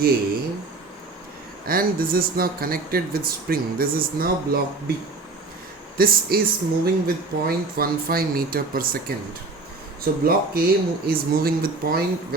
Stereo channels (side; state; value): left; quieter; 3.5 dB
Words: A and this is now connected with spring. This is now block B. This is moving with 0.15 meter per second. So block A is moving with